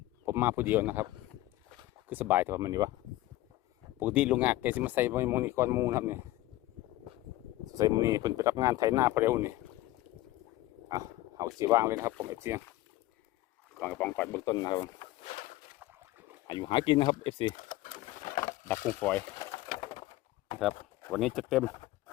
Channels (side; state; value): right; quieter; 16.7 dB